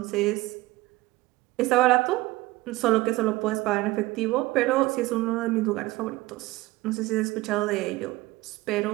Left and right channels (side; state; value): left; quieter; 19.1 dB